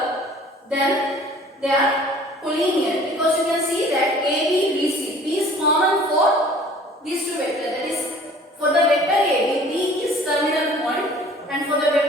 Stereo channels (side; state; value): both; normal; correlation 0.50